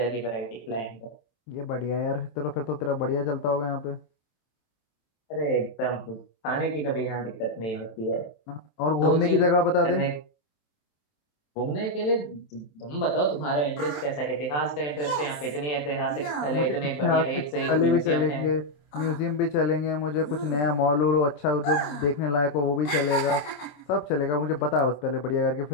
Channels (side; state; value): right; late; 27 ms